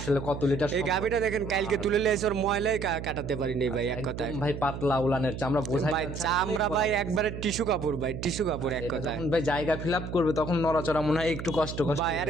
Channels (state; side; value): noise; right; hum, 8 dB below the sound